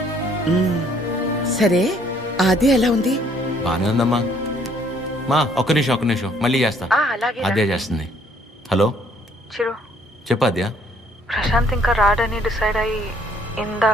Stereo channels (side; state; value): both; normal; correlation 0.63